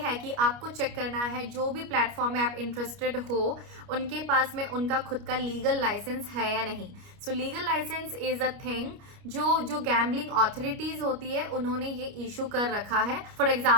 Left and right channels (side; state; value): left; late; 29 ms